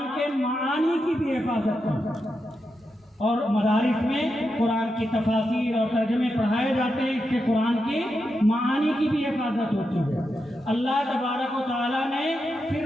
کے معانی کی بھی حفاظت کی، اور مدارس میں قرآن کی تفاسیر اور ترجمے پڑھائے جاتے ہیں، اس سے قرآن کی معانی کی بھی حفاظت ہوتی ہے۔ اللہ تبارک و تعالیٰ نے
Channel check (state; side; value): normal; both; correlation 0.86